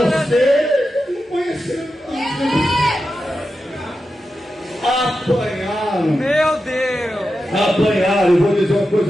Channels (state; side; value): normal; both; correlation 0.90